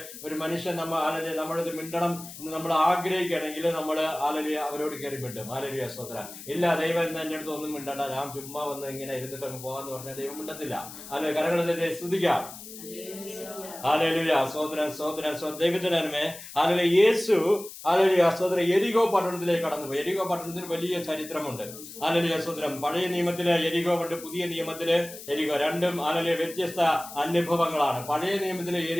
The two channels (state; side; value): noise; left; hiss, 14 dB below the sound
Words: ഒരു മനുഷ്യൻ നമ്മളിത് മിണ്ടണം എന്ന് നമ്മൾ ആഗ്രഹിക്കുകയാണെങ്കിൽ നമ്മൾ ഹല്ലേലൂയ അവരോട് കയറി മിണ്ടും. ഹല്ലേലൂയ സ്തോത്രം. ഇല്ല, ദൈവം എന്റെ അടുത്ത് ഒന്നും മിണ്ടണ്ട, ഞാൻ ചുമ്മാ വന്ന് ഇങ്ങനെ ഇരുന്നിട്ട് അങ്ങ് പോകാന്ന് പറഞ്ഞാൽ ദൈവം മിണ്ടത്തില്ല. അല്ലെ? കരകളിലെ സ്തുതിക്കാം. ഹല്ലേലൂയ സ്തോത്രം സ്തോത്രം സ്തോത്രം. ദൈവത്തിന്റെ നന്മ. ഹല്ലേലൂയ. യേശു ഹല്ലേലൂയ സ്തോത്രം യെരിഹോ പട്ടണത്തിലേക്ക് കടന്നുപോയി. യെരിഹോ പട്ടണത്തിന് വലിയ ചരിത്രമുണ്ട്. ഹല്ലേലൂയ സ്തോത്രം. പഴയ നിയമത്തിലെ യെരിഹോ ഉണ്ട്, പുതിയ നിയമത്തിലെ യെരിഹോ, രണ്ടും ഹല്ലേലൂയ വ്യത്യസ്ത അനുഭവങ്ങളാണ്. പഴയ നിയമത്തിലെ